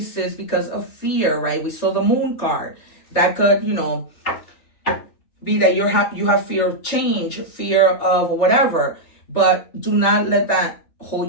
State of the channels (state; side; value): late; right; 3.4 ms